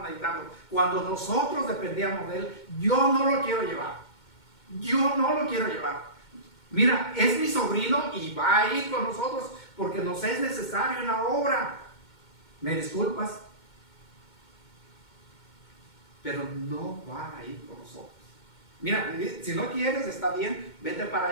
necesitando, cuando nosotros dependíamos de él. Yo no lo quiero llevar. Mira, es mi sobrino y va a ir con nosotros porque nos es necesario en la obra. ¿Me disculpas? Pero no va a ir con nosotros. Mira, si no quieres, está bien, vete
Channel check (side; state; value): right; late; 2.2 ms